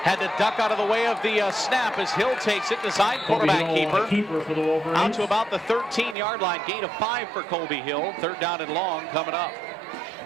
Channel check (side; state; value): left; drops out; at 6.2 s